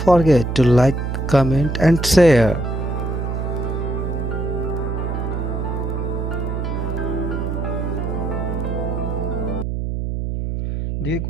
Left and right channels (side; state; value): right; noise; hum, 2 dB below the sound